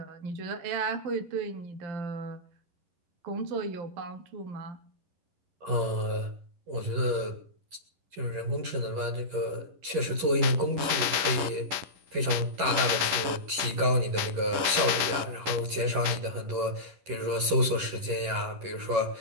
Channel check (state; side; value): late; left; 11 ms